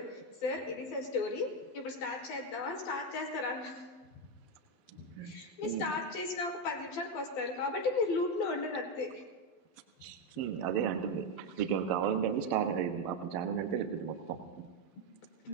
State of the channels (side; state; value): right; late; 12 ms